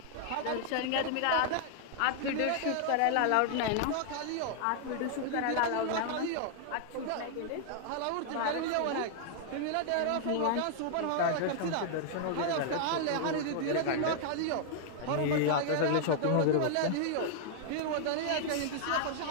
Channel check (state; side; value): different; both; correlation -0.01